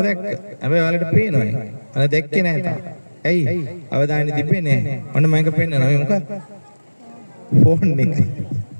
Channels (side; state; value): both; inverted; correlation -1.00